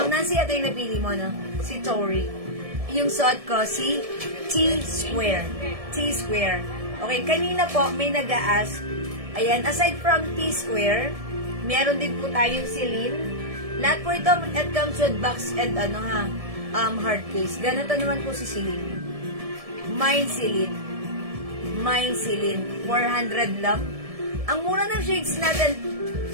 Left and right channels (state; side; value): late; left; 1.7 ms